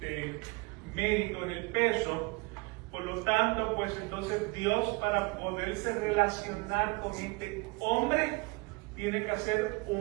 mérito en el peso. Por lo tanto, pues entonces Dios, para poderse relacionar con este hombre, tiene que hacer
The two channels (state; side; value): quieter; left; 27.1 dB